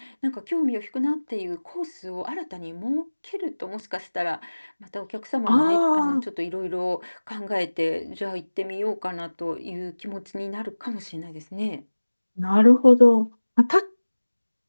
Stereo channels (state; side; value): inverted; both; correlation -1.00